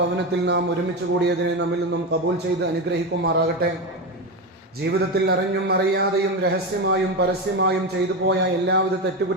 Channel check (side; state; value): both; normal; correlation 0.15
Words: നാം ഒരുമിച്ച് കൂടിയതിനെ നമ്മിൽ നിന്നും ഖബൂൽ ചെയ്ത് അനുഗ്രഹിക്കുമാറാകട്ടെ. ജീവിതത്തിൽ അറിഞ്ഞും അറിയാതെയും രഹസ്യമായും പരസ്യമായും ചെയ്തു പോയ എല്ലാവിധ